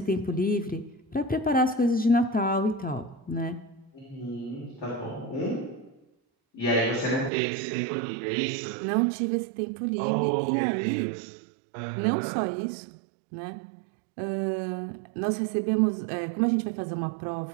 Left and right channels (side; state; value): left; drops out; at 7.3 s